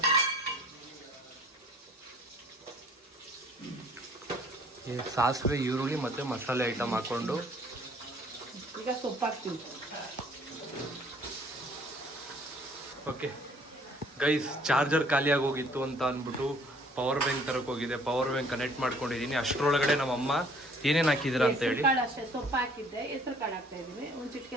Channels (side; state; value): both; normal; correlation 0.57